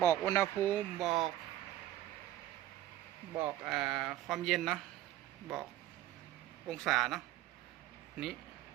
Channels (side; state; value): left; quieter; 14.0 dB